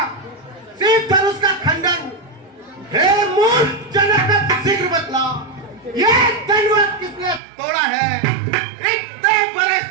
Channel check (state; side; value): drops out; left; at 7.4 s